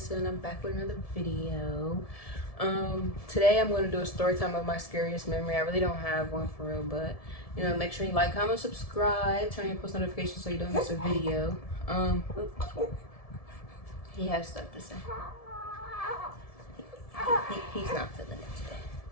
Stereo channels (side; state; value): right; late; 1.7 ms